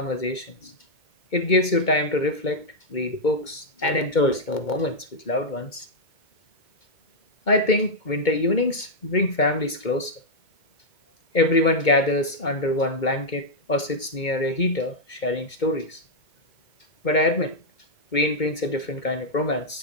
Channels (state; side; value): late; right; 2.2 ms